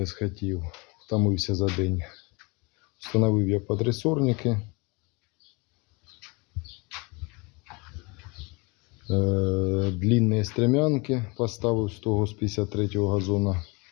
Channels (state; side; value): quieter; right; 28.2 dB